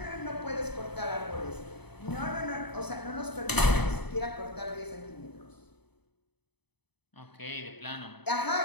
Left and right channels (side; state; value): right; late; 0.98 ms